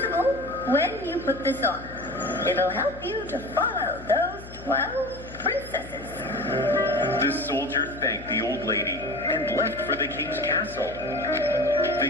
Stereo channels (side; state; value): left; noise; hum, 15 dB below the sound